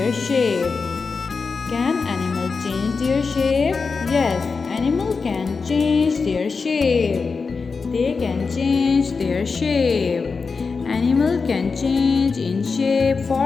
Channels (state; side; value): quieter; right; 4.8 dB